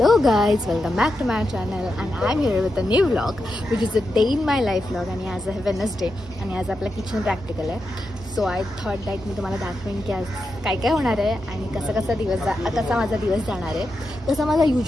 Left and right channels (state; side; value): normal; both; correlation 0.87